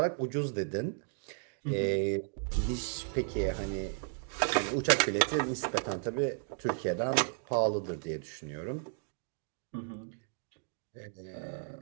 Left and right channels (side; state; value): left; silent; 55 dB below the other